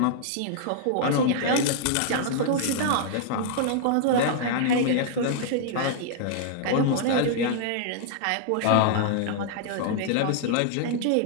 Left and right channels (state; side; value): different; both; correlation -0.01